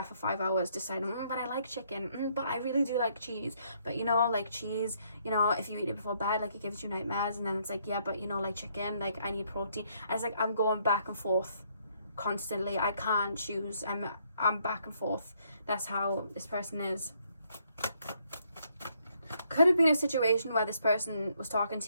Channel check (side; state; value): both; inverted; correlation -0.70